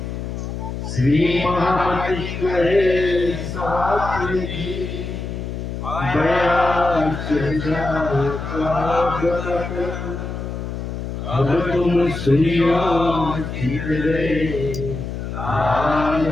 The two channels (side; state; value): left; noise; hum, 6 dB below the sound